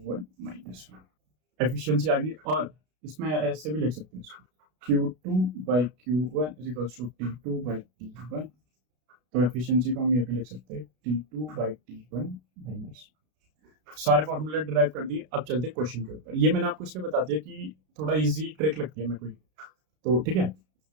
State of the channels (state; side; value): late; left; 33 ms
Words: minus 1। Efficiency आ गई, और इसमें ऐसे भी लिख सकते हैं इसको, Q2 by Q1 is equals to T2 by T1। तो एफिशिएंसी को हम ये भी लिख सकते हैं T2 बाई T1 माइनस। सारे फॉर्मूले डिराइव कर दिए, अब चलते हैं क्वेश्चन के ऊपर। ये मैंने आपको इसलिए बता दिया कि थोड़ा इजी ट्रिक लगती है मेरे को, तो ठीक है,